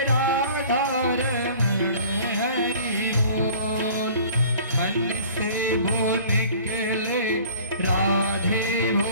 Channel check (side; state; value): both; inverted; correlation -0.48